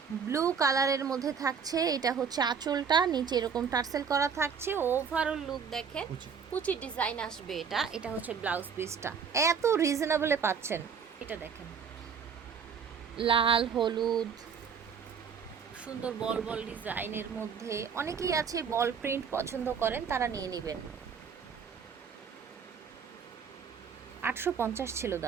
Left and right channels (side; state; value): left; quieter; 6.5 dB